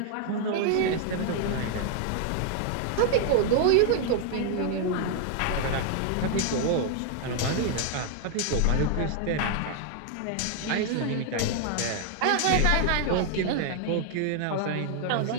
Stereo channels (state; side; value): different; both; correlation 0.00